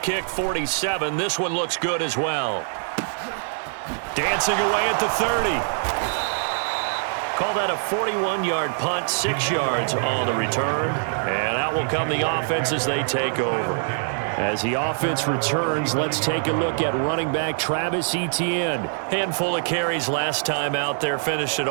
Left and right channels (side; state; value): left; silent; digital silence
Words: kick, 47. This one looks good as well. Dancing away at the 30. Call that a 41-yard punt, 6 yards on the return. And out will come the offense as they take over. As the offense returns, let's take a look at running back Travis Etienne. Handful of carries last time out there. Finished it